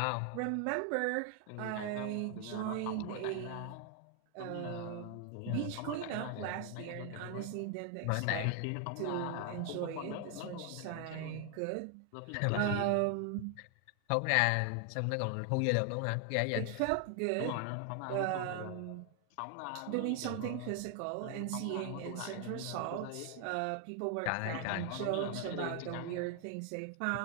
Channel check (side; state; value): both; different; correlation 0.00